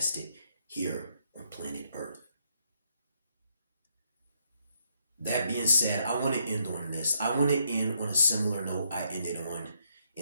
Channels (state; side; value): inverted; both; correlation -0.74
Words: here on planet Earth. That being said, I want to end on this. I want to end on a similar note I ended on